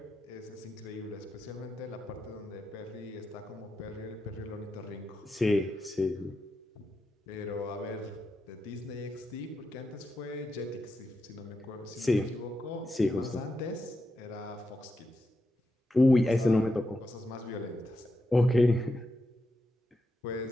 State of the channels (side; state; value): both; normal; correlation 0.86